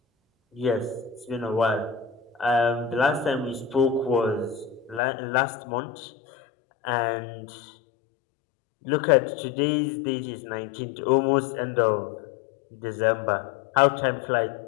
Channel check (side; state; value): right; drops out; at 5.0 s